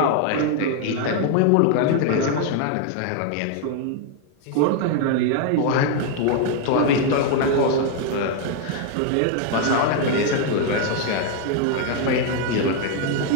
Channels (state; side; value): different; both; correlation 0.00